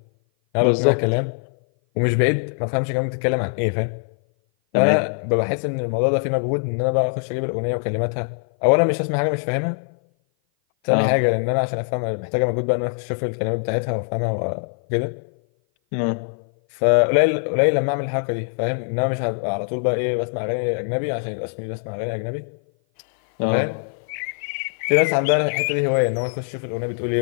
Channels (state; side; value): silent; right; 57 dB below the other